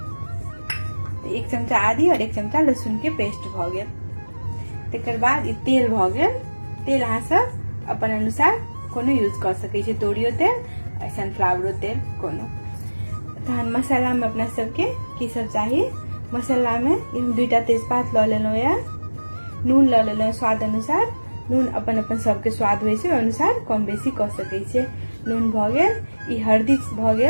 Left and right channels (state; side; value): inverted; both; correlation -1.00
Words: 1 चमचा आदि और 1 चमचा लहसुन के पेस्ट भ गेल। तकर बाद ई तेल भ गेल। तेल अहाँ सब अपन अनुसार कोनो यूज कर सकै छी, तोरियो तेल, सनफ्लावरो तेल कोनो। तहन मसाला में अपना सबके की सब चाहिए। मसाला में हम 2टा तेजपात ल लेलो या, नून ल लेलो स्वाद अनुसार। नून अपन अपन सबके स्वाद होय छै अनुसार कम बेसी क सकै छै। नून भ गेल। ई हल्दी भ